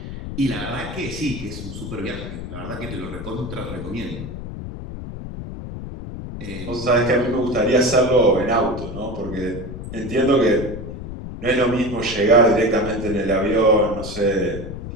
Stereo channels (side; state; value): left; noise; rumble, 9 dB below the sound